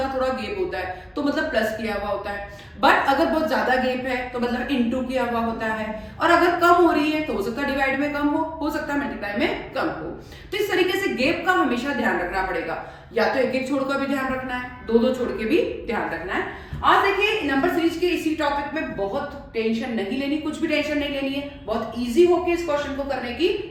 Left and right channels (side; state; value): both; identical; correlation 1.00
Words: थोड़ा गैप होता है तो मतलब प्लस किया हुआ होता है, बट अगर बहुत ज्यादा गैप है तो मतलब इनटू किया हुआ होता है, और अगर कम हो रही है तो हो सकता है डिवाइड में कम हो सकता है मल्टीप्लाई में कम हो। तो इस तरीके से गैप का हमेशा ध्यान रखना पड़ेगा, या तो एक एक छोड़ कर भी ध्यान रखना है, दो दो छोड़ के भी ध्यान रखना है। आज देखिए नंबर सीरीज के इसी टॉपिक में बहुत टेंशन नहीं लेनी, कुछ भी टेंशन नहीं लेनी है, बहुत इजी होके इस क्वेश्चन को करने की